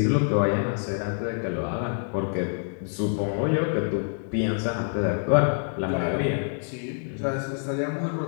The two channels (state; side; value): silent; right; digital silence